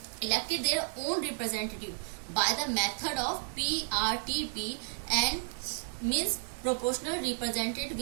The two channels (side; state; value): left; silent; digital silence